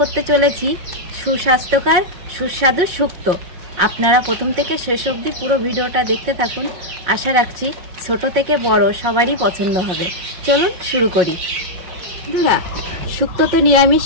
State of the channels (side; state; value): left; late; 5.5 ms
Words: চলেছি সুস্বাস্থ্যকর সুস্বাদু শুক্তো। আপনারা প্রথম থেকে শেষ অবধি পুরো ভিডিওটা দেখতে থাকুন। আশা রাখছি ছোট থেকে বড় সবারই পছন্দ হবে। চলুন শুরু করি। বন্ধুরা, শুক্তো তো